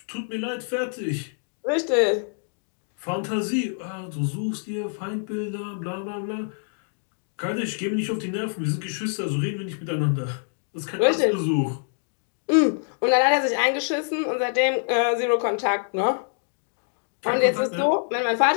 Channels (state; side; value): silent; right; digital silence